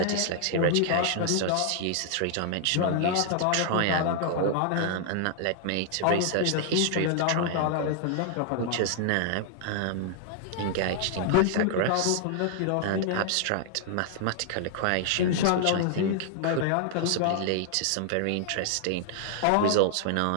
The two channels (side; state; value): both; different; correlation 0.00